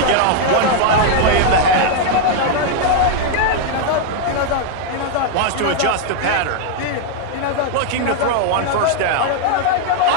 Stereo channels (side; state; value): both; different; correlation 0.00